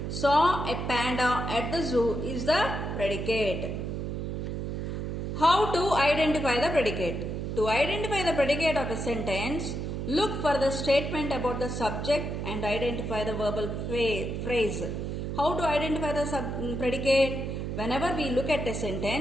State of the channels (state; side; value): noise; right; hum, 3 dB below the sound